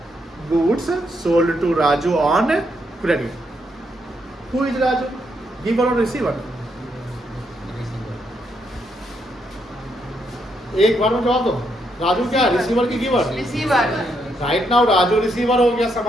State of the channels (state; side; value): normal; both; correlation 0.77